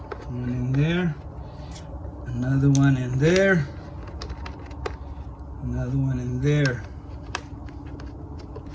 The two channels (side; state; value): both; identical; correlation 1.00